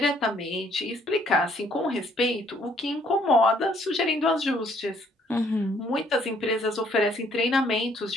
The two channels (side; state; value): both; normal; correlation 0.65